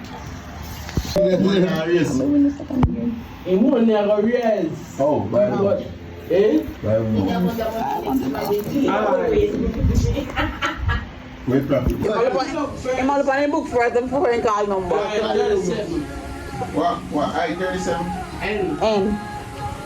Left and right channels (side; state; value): both; identical; correlation 1.00